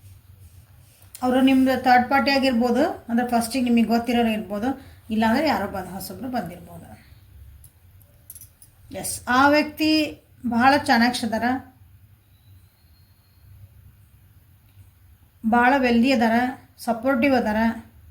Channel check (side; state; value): both; identical; correlation 1.00